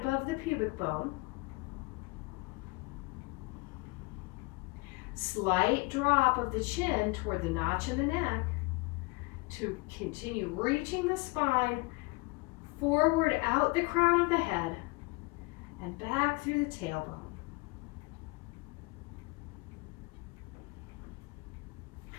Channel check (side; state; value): right; quieter; 26.1 dB